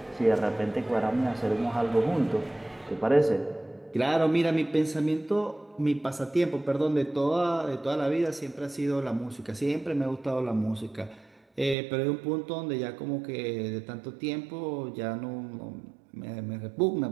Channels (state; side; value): drops out; left; at 11.8 s